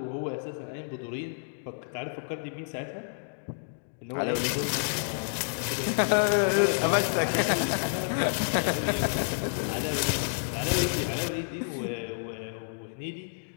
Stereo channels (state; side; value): silent; right; digital silence